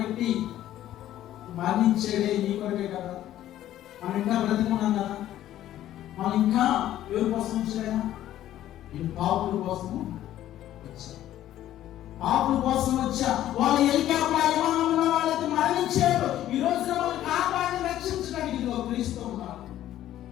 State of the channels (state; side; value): quieter; right; 12.8 dB